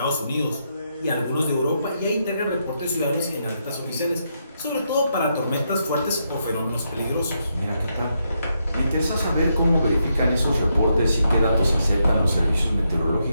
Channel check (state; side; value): inverted; both; correlation -0.81